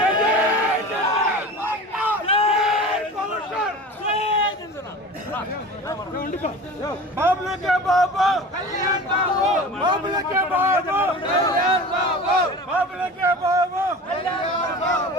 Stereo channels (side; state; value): both; normal; correlation 0.36